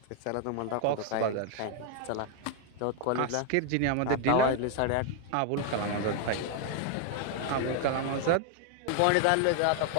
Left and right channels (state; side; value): different; both; correlation 0.00